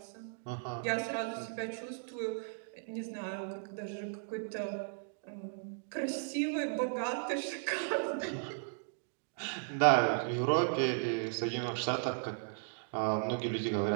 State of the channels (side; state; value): left; silent; digital silence